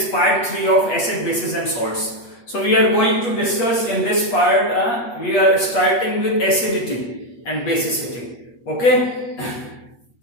part 3 of acid, bases and salts. So we are going to discuss in this part, we are starting with acidity and basicity. Okay?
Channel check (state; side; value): late; right; 8.3 ms